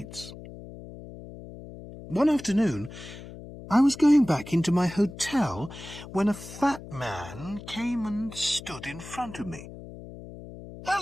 One afternoon, I was going back into my hotel when a fat man came and stood in front of me.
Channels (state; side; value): noise; left; hum, 14 dB below the sound